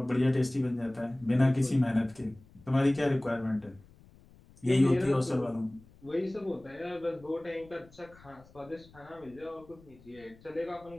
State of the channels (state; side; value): noise; left; rumble, 25 dB below the sound